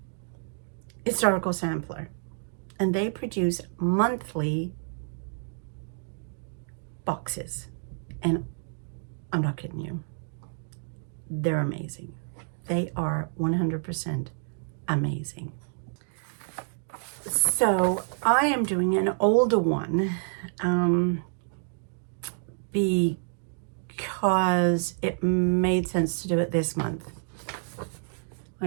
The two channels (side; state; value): left; silent; digital silence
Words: Historical Sampler, and they produce monthly boxes, and I'm not kidding you, they're amazing. They are 100% amazing. So I am doing an older one because it made sense to do it this month.